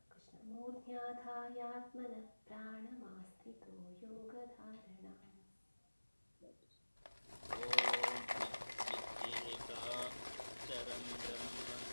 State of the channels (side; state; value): both; inverted; correlation -1.00